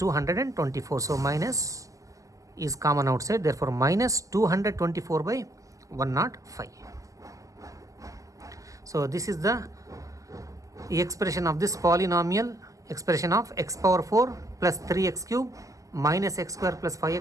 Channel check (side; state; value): left; late; 0.16 ms